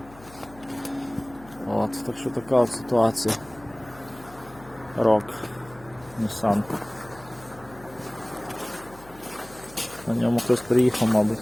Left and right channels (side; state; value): left; noise; hum, 22 dB below the sound